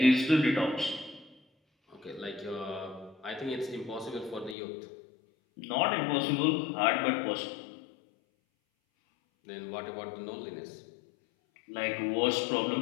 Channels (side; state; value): right; drops out; at 4.5 s